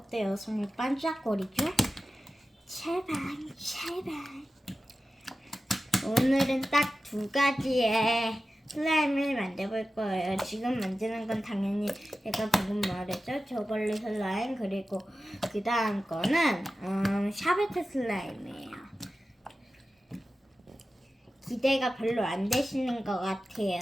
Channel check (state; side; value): normal; both; correlation 0.94